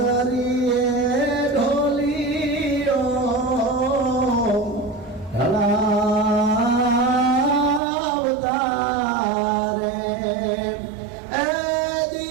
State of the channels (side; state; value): left; drops out; at 7.8 s